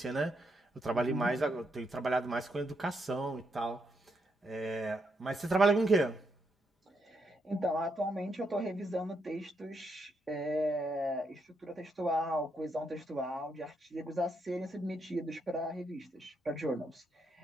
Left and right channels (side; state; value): both; normal; correlation 0.79